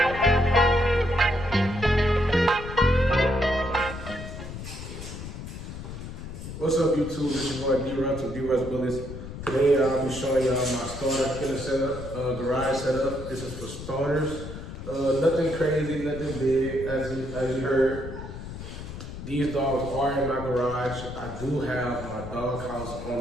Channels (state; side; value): noise; left; rumble, 10 dB below the sound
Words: What's up, YouTube? This your boy D-Russ from D-Russ Bullets. Today I'll be showing y'all my starter kennel setup, garage setup. This is for starters. Nothing crazy, nothing big. As you heard, these dogs are in my garage. I do have my dog house on